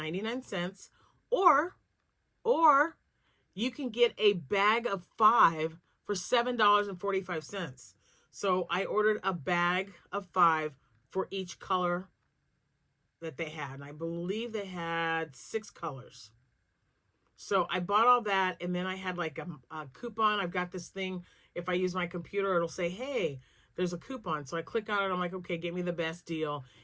or you can get a bag of 5 for $7.45. So I ordered a bag of 5 for each color that they had. And I believe they had 6 colors. So I bought all that, and then I had like a coupon. I've got this thing, if I use my computer, it'll say, hey, there's a coupon. So I click on it. I'm like, okay, get me the best deal.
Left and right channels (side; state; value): both; identical; correlation 1.00